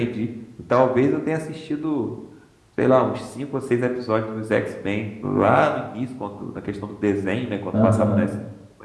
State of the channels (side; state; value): both; identical; correlation 1.00